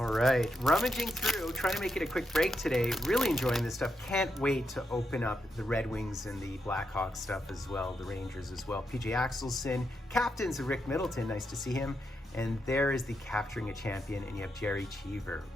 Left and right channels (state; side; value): normal; both; correlation 0.83